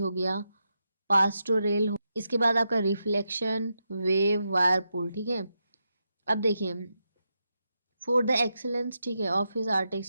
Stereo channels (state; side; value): inverted; both; correlation -0.86